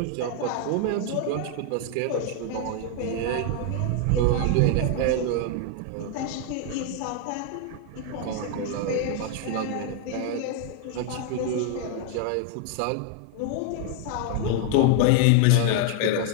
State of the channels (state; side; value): different; both; correlation 0.00